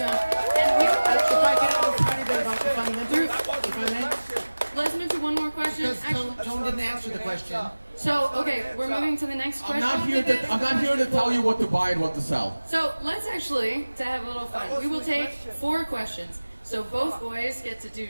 And we If I can add a tiny bit about the fundamentals, if I may. let's move to one more question. Because Tone didn't answer the question. So, okay, we're moving to the next question. I'm not here to tell you what to buy and what to sell. So let's actually, to have a little fun, we will take 4 questions. So both boys get to do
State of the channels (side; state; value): both; inverted; correlation -1.00